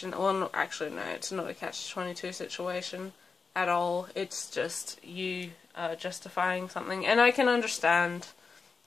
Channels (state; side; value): quieter; right; 4.8 dB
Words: Well, no, actually, no, it's not a catch-22 situation at all. It's just you justifying something. And I can understand